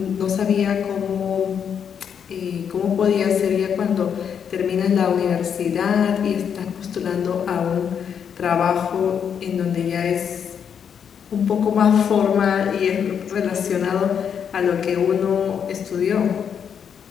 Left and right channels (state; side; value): quieter; right; 7.7 dB